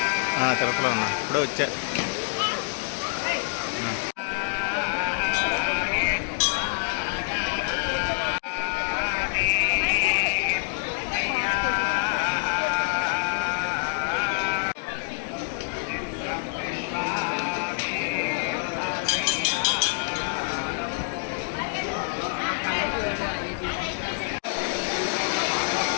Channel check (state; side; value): silent; right; digital silence